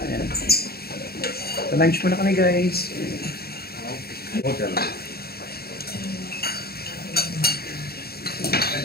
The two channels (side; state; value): right; late; 0.45 ms